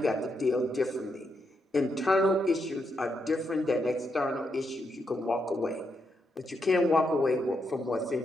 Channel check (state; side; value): normal; both; correlation 0.81